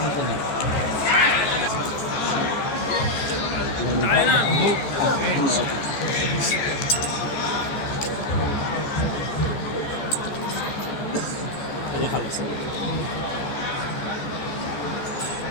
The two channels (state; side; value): late; right; 14 ms